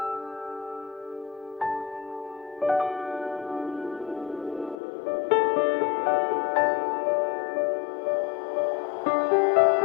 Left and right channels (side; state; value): right; drops out; at 4.8 s